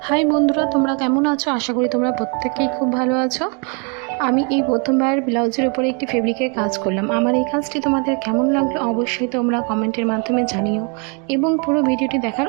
হাই বন্ধুরা, তোমরা কেমন আছো? আশা করি তোমরা প্রত্যেকেই খুব ভালো আছো। আমি এই প্রথমবার ব্লাউজের উপরে একটি ফেব্রিকের কাজ করলাম। আমার এই কাজটি তোমাদের কেমন লাগলো অবশ্যই তোমরা কমেন্টের মাধ্যমে জানিও এবং পুরো ভিডিওটি দেখার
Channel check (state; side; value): quieter; left; 35.5 dB